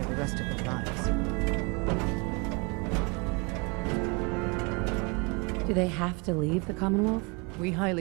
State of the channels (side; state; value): left; quieter; 29.2 dB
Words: for the rest of their lives. Do they have to leave the Commonwealth? We